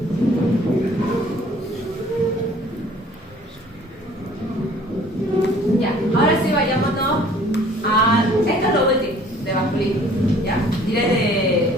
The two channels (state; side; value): normal; both; correlation 0.53